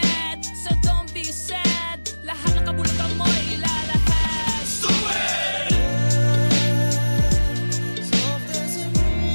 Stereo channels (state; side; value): inverted; both; correlation -1.00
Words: so don't be sad. Lahat ng kabulutan mo ilalahad. Stupid! Stupid!